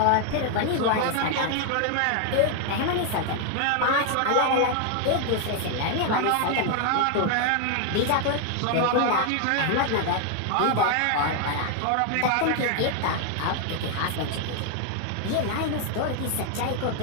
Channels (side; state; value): both; different; correlation 0.00